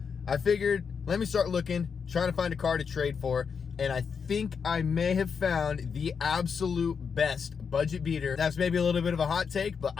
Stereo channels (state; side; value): quieter; right; 6.2 dB